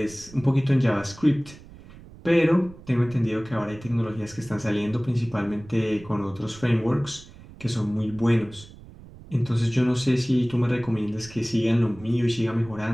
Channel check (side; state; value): right; noise; rumble, 20 dB below the sound